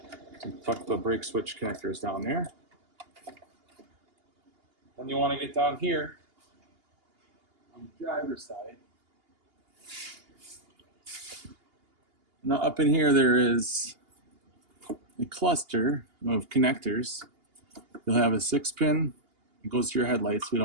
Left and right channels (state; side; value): late; left; 2.8 ms